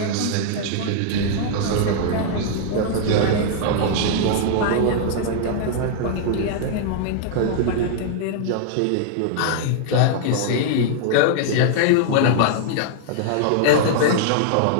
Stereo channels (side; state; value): both; different; correlation -0.01